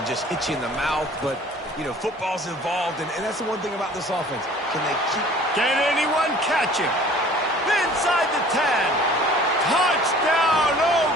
just hit you in the mouth. But, you know, football's involved, and that's the one thing about this offense. Can they keep... Can anyone catch him? Inside the 10. Touchdown,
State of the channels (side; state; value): both; normal; correlation 0.49